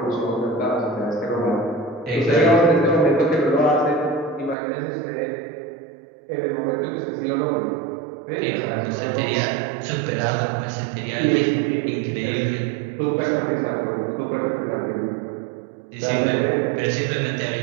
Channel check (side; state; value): left; drops out; at 4.5 s